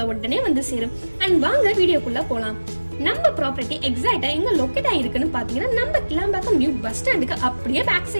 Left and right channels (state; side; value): inverted; both; correlation -1.00